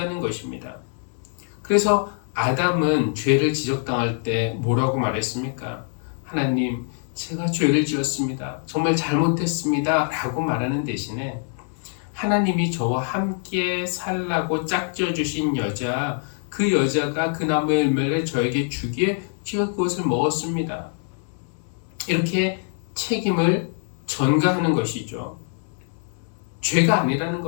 것입니다. 그래서 아담은 죄를 지적당할 때 뭐라고 말했습니까? 하나님, 제가 죄를 지었습니다. 정말 잘못했습니다. 라고 말하는 대신에 하나님이 저와 함께 살라고 짝지어 주신 여자, 그 여자가 그 나무의 열매를 저에게 주기에 제가 그것을 먹었습니다. 이렇게 책임을 전가하는 것이죠. 죄가 아니라는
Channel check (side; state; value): right; silent; 58 dB below the other